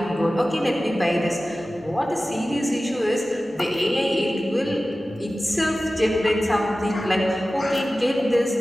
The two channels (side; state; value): both; normal; correlation 0.96